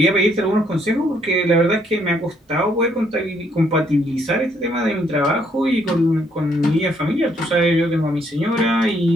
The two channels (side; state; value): both; normal; correlation 0.70